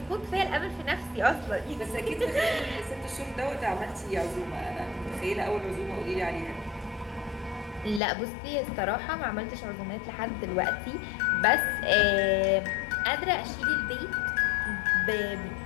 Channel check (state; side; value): drops out; right; at 8.0 s